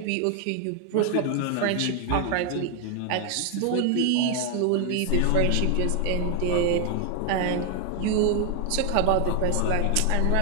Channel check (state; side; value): different; both; correlation 0.00